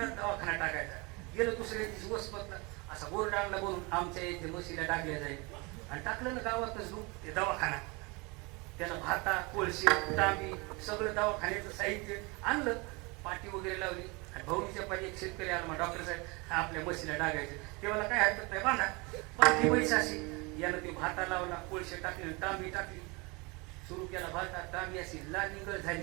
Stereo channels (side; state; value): left; quieter; 27.3 dB